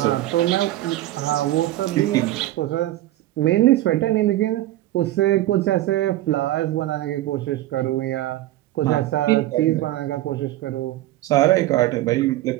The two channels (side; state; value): left; quieter; 15.3 dB